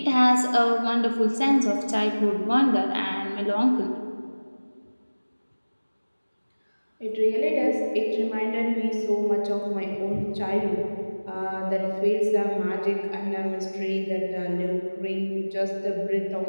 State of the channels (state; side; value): inverted; both; correlation -1.00